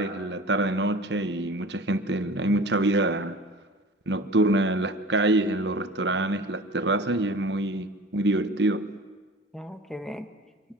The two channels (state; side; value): normal; both; correlation 0.39